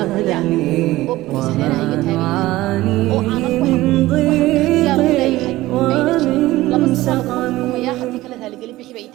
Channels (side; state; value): left; quieter; 17.4 dB